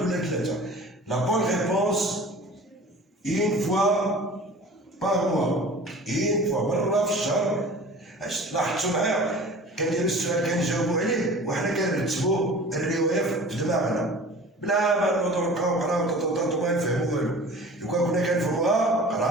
ثلاثه. لا بون ريبونس une fois par mois. une fois مرة في الشهر. لاحظتوا معايا كندير السؤال كنجاوبوا عليه وحنا كنرتبوا الرواية في دماغنا بلا ما نوضو نبقاو نقراو ما نفهمو والو. لو كان كنا كنفهموها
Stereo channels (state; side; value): normal; both; correlation 0.41